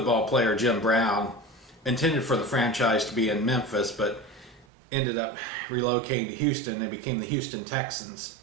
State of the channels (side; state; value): left; drops out; at 4.7 s